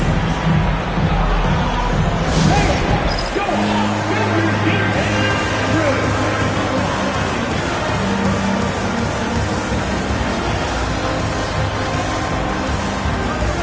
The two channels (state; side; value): identical; both; correlation 1.00